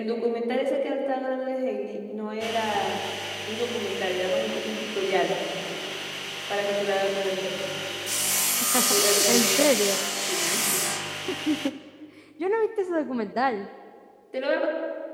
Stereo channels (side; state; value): both; identical; correlation 1.00